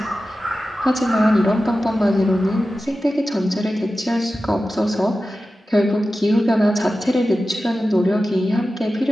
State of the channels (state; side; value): normal; both; correlation 0.94